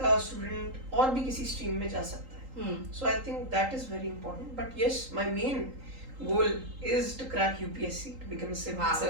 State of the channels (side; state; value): left; late; 3.8 ms